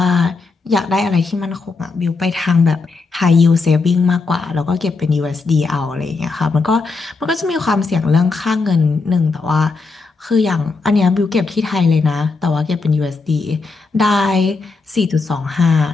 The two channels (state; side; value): quieter; right; 4.1 dB